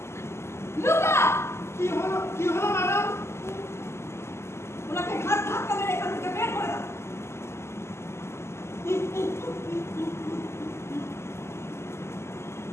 লুকা! কি হলো ম্যাডাম? ওনাকে ঘাট ধাক্কা মেরে এখান থেকে বের করে দাও।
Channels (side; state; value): right; late; 0.13 ms